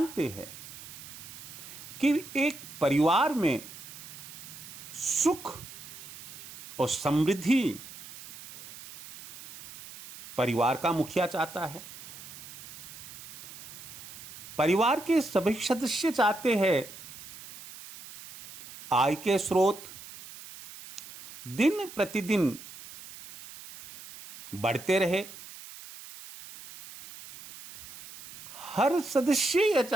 हैं कि एक परिवार में सुख और समृद्धि परिवार का मुखिया चाहता है। परिवार के सभी सदस्य चाहते हैं आय के स्रोत दिन प्रतिदिन बढ़ते रहे। हर सदस्य यह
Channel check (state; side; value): noise; right; hiss, 15 dB below the sound